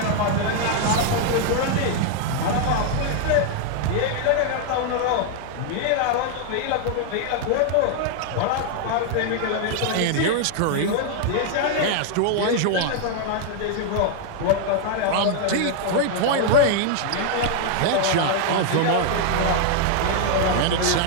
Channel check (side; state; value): both; different; correlation 0.00